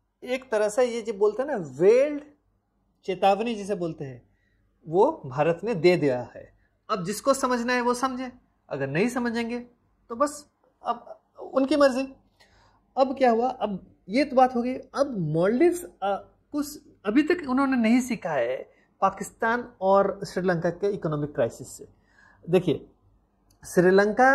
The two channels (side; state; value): both; identical; correlation 1.00